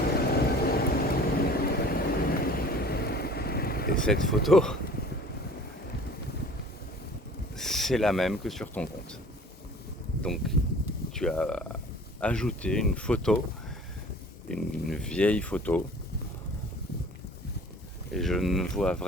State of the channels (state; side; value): normal; both; correlation 0.47